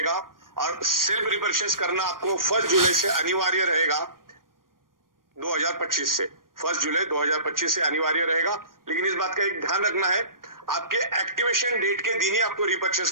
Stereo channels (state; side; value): late; left; 0.91 ms